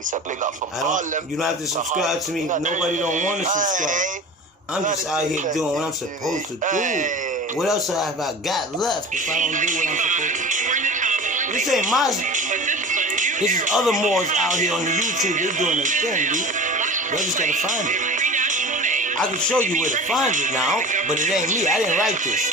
So big up from Harlem. You don't have to subscribe to me. Nobody don't want to subscribe. I'm just out here doing what I'm supposed to do. What else have I got left if I don't do what I'm supposed to do? This ain't my... This is other Moors out here on the YouTube. They're doing their thing, dude. They just gotta find it. I can show you where to find it now, but it ain't me. I didn't write this.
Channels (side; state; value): both; normal; correlation 0.36